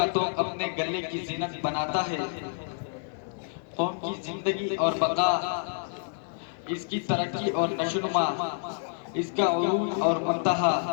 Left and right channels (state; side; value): silent; right; 59 dB below the other